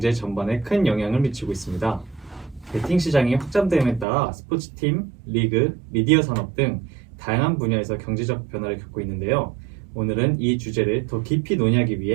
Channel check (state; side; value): drops out; left; at 4.0 s